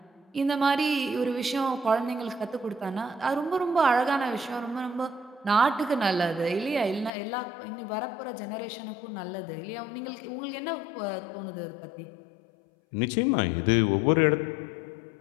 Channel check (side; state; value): right; drops out; at 7.1 s